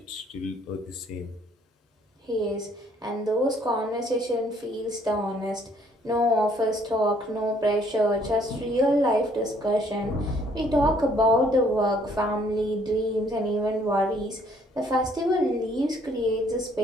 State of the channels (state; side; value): normal; both; correlation 0.63